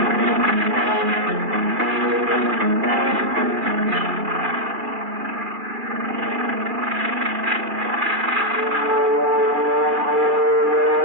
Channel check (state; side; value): late; left; 2.3 ms